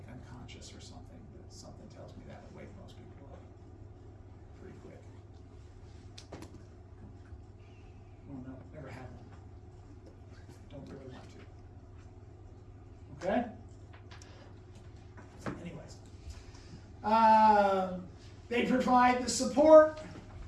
unconscious or something, but something tells me that would wake most people up pretty quick. Oh no, never had one. Don't really want to. Okay? Anyways. They provide the support,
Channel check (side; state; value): both; identical; correlation 1.00